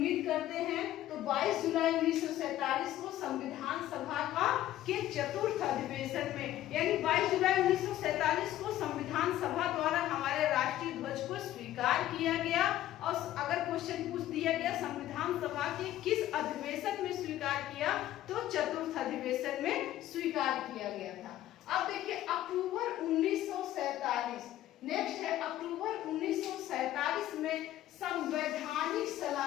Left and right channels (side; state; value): right; quieter; 13.5 dB